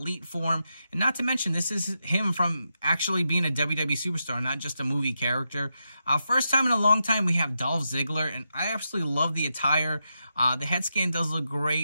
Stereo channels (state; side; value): inverted; both; correlation -0.86